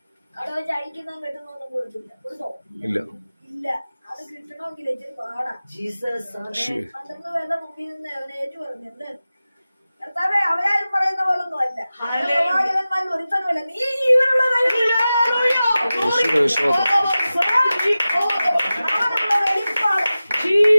അവിടെ വെച്ച് അഴിക്കുന്നതും കെട്ടുന്നൊന്നും കൊടുത്തില്ല. കൊടുത്തോ? ഇല്ല. ഇല്ല. അത് കിട്ടണമെങ്കിൽ ഇച്ചിരി പാടാ. 12 പേരുടെ മുമ്പിൽ നിന്ന് അവനെ ഏറ്റു പറഞ്ഞു, എന്ത് കർത്താവേ, അവരാരും പറയുന്ന പോലൊന്നും അല്ല, പ്രവാചകന്മാരിൽ ഒരുത്തനുമല്ല, നീ ജീവനുള്ള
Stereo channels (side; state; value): both; inverted; correlation -0.95